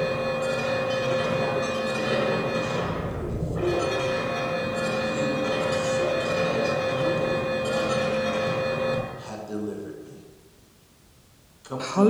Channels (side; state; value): both; identical; correlation 1.00